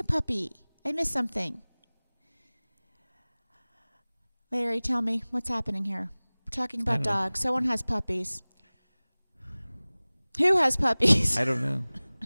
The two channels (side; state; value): both; inverted; correlation -1.00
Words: a puppy? I missed something. Larry, tell me what's happening here. We're talking about dogs. Someone has puppies. Who has puppies? I don't know.